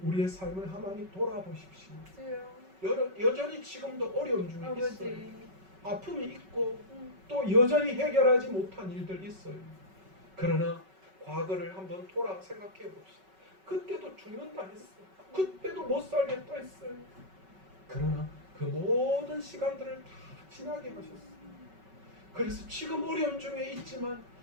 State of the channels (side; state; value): left; late; 5.3 ms